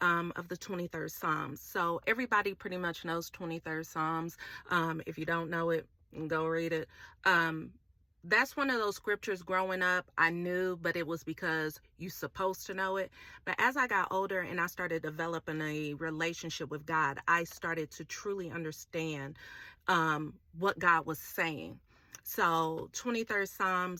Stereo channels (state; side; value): identical; both; correlation 1.00